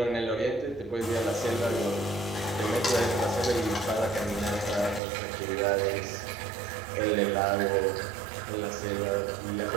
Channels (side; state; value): left; drops out; at 5.0 s